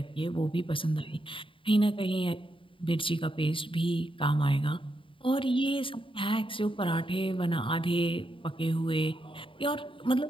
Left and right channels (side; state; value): right; late; 0.25 ms